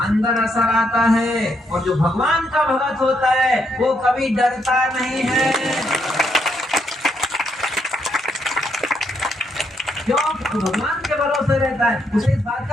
असर आता है, और जो भगवान का भगत होता है वो कभी डरता नहीं है। क्यों? तो भगवान के भरोसे रहता है, उसे इस बात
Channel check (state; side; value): normal; both; correlation 0.76